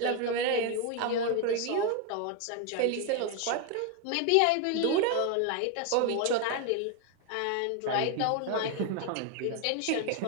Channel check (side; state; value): both; different; correlation 0.01